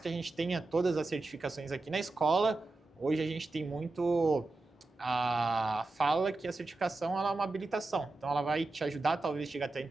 a gente tenha todas as certificações aqui na escola, hoje a gente tem muito... fala que a certificação ela é uma habilitação, então ela vai te ajudar talvez chegar até a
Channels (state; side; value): quieter; left; 3.2 dB